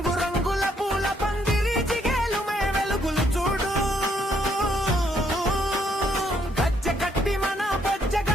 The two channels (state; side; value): normal; both; correlation 0.71